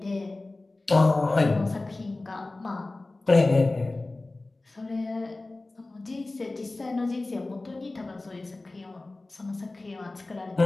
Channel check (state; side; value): quieter; right; 3.1 dB